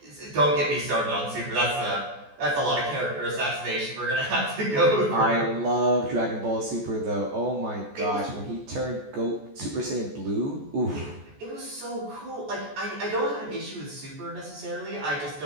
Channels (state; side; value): late; left; 14 ms